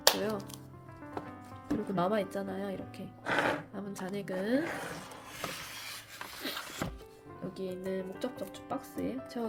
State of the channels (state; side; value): identical; both; correlation 1.00